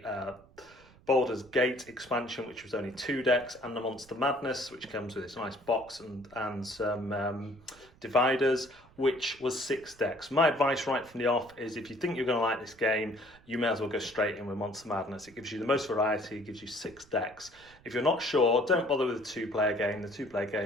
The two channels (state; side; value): noise; right; rumble, 26 dB below the sound